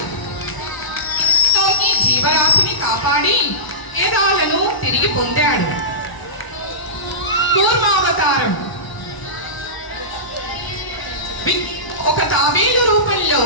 జీవరాశిని కాపాడి వేదాలను తిరిగి పొందాడు. కూర్మావతారం. ఒక తాబేలు రూపంలో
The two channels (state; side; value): late; right; 1.0 ms